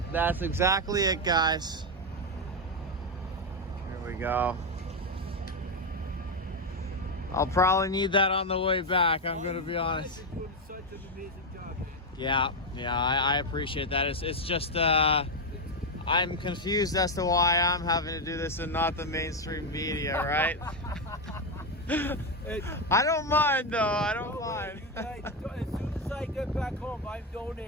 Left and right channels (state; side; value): normal; both; correlation 0.06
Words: that's exactly it, guys. Here we go. I'll probably need that on the way back, I'm gonna be honest. You guys are doing such an amazing job, man. Yeah, I appreciate that. It's just I'm confused as to why I'm having to do this and not the mainstream media, right? I don't mind though. I don't mind. You guys, as soon as I get back home, I'm